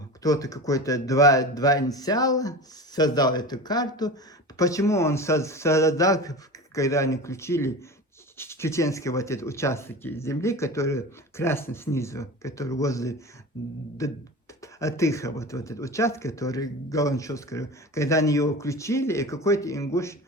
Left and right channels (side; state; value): both; normal; correlation 0.31